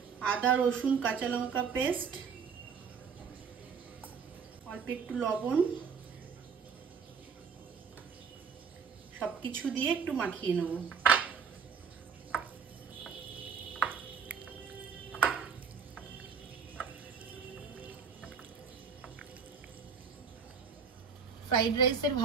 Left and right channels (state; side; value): quieter; left; 6.3 dB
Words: আদা রসুন কাঁচা লঙ্কা পেস্ট, অল্প একটু লবণ, সবকিছু দিয়ে একটু মাখিয়ে নেব। ফ্রাইড রাইসের